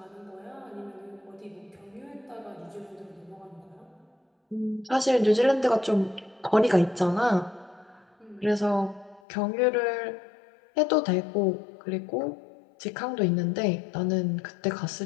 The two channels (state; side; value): drops out; right; at 9.2 s